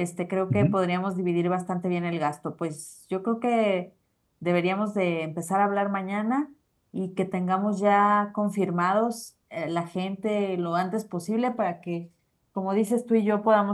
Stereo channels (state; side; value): identical; both; correlation 1.00